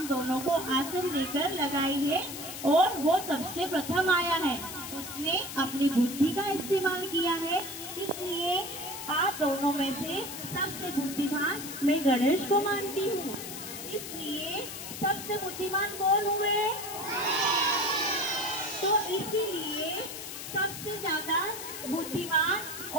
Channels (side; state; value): left; noise; hiss, 9 dB below the sound